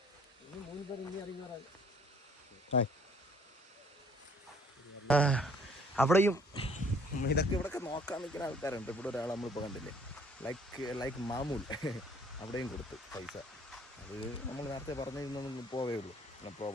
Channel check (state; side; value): normal; both; correlation 0.59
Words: 3 പേര് ഇനി ഇറങ്ങി. അവിടെയും ഇതൊക്കെ ഇവിടെയൊക്കെ നോക്കാൻ നിൽക്കുന്ന ആൾക്കാരുണ്ട്. ഇവിടെ ഒരാൾ നമ്മളിപ്പോൾ കണ്ടില്ലേ, ലൈക്ക് മാമൂൽ, അവിടെയും കൊടുത്ത് പൈസ. അത് നമ്മൾ നേരത്തെ പറഞ്ഞിരുന്നൊന്നും പോവേ ഉള്ളൂ, നോ